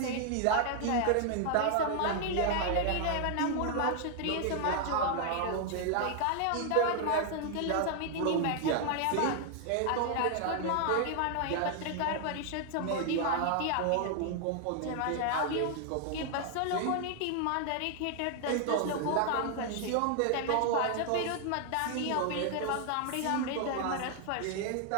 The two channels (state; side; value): different; both; correlation 0.00